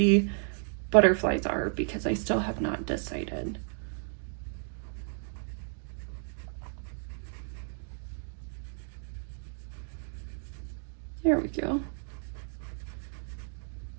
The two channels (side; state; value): left; silent; 56 dB below the other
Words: butterflies are, because I still have not decided. There we go.